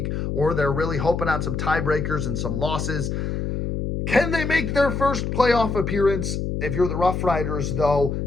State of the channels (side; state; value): left; noise; hum, 2 dB below the sound